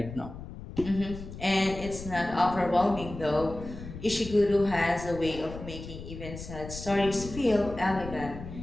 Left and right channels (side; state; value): left; noise; rumble, 11 dB below the sound